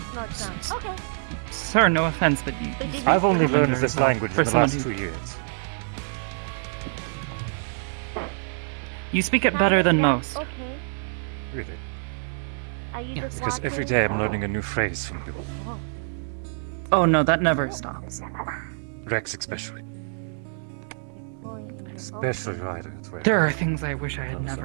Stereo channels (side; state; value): left; silent; digital silence